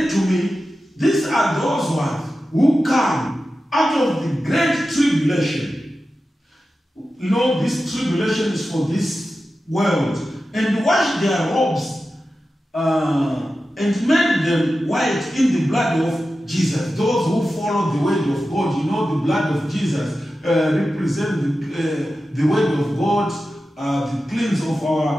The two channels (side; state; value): both; normal; correlation 0.93